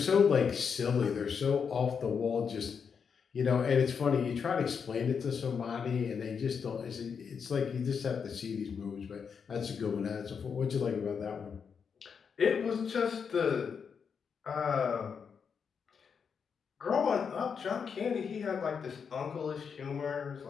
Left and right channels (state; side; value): quieter; right; 6.4 dB